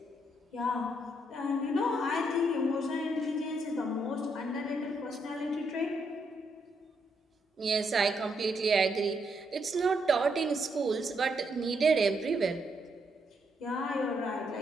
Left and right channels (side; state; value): both; normal; correlation 0.77